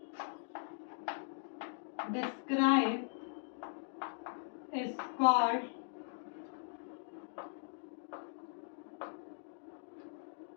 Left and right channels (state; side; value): silent; right; digital silence